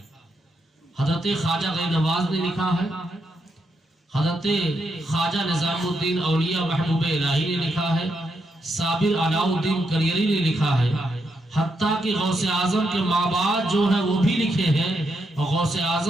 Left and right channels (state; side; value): normal; both; correlation 0.81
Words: حضرت خواجہ غیر نواز نے لکھا ہے، حضرت خواجہ نظام الدین اولیاء محبوب الہی نے لکھا ہے، صابر علاء الدین کریری نے لکھا ہے، حتیٰ کہ غوث اعظم کے ماں باپ جو ہیں وہ بھی لکھے ہیں، اور غوث